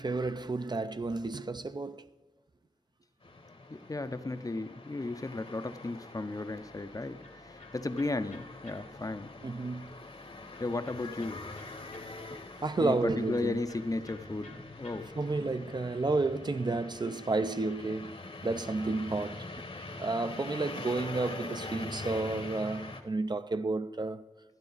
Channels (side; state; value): both; normal; correlation 0.78